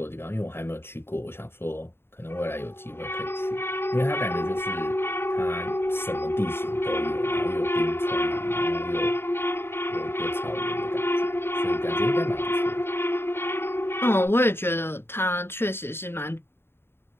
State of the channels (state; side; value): late; right; 0.11 ms